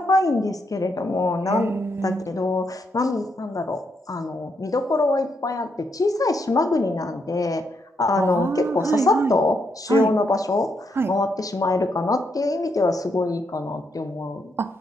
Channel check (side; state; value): both; normal; correlation 0.78